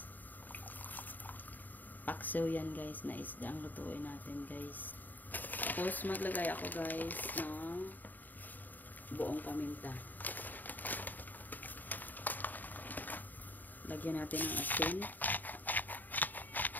Paksiw yan guys na isda ang lutuin natin guys. Tapos maglagay ako guys ng buong paminta. Lagyan natin ng asin.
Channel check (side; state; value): right; late; 0.086 ms